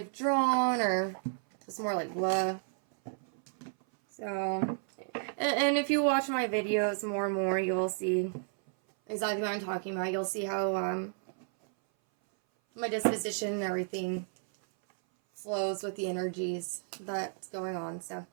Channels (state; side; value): silent; left; 57 dB below the other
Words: or just more like blah. So, and if you watch my videos more and more, you'll see exactly what I'm talking about. You'll see how my disposition and everything flows with the energies that's going on. So,